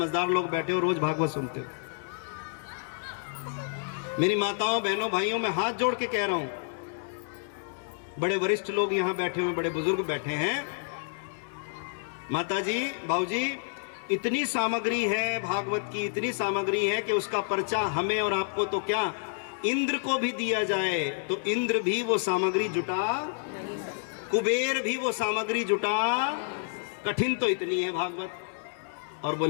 लोग बैठे हो, रोज भागवत सुनते हो। मेरी माताओं बहनों भाइयों, मैं हाथ जोड़ के कह रहा हूं, बड़े वरिष्ठ लोग यहां बैठे हुए, बड़े बुजुर्ग बैठे हैं। माताजी बाबूजी, इतनी सामग्री है भागवत की, इतनी सामग्री है कि उसका पर्चा हमें और आपको तो क्या, इंद्र को भी दिया जाए तो इंद्र भी वो सामग्री जुटा, कुबेर भी वो सामग्री जुटा। कठिन तो इतनी है भागवत। और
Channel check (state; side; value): silent; right; digital silence